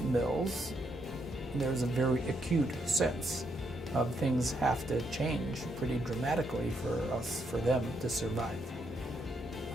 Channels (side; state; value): both; normal; correlation 0.77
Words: mills, there's a very acute sense of things have to change pretty dramatically for them to survive.